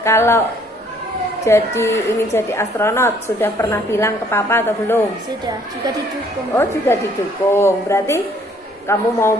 ingin jadi astronot sudah pernah bilang ke papa atau belum? Sudah, juga didukung. Oh, juga didukung. Berarti kamu mau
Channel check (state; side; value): normal; both; correlation 0.62